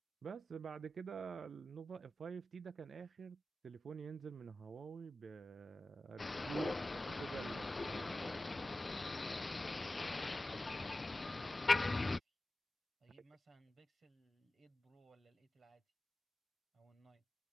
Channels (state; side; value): normal; both; correlation 0.94